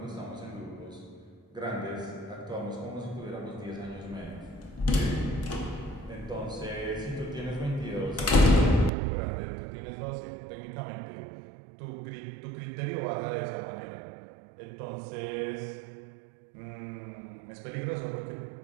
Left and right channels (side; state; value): left; drops out; at 8.9 s